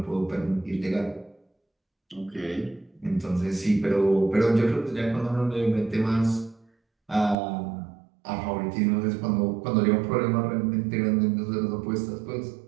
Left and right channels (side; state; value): left; drops out; at 7.4 s